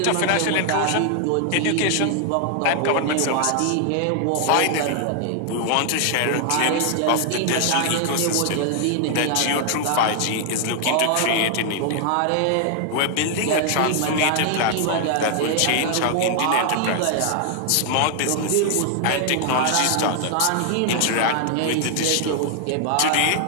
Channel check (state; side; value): different; both; correlation 0.00